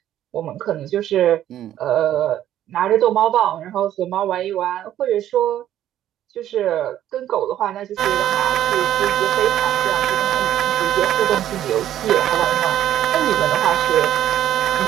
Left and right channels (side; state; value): left; quieter; 11.9 dB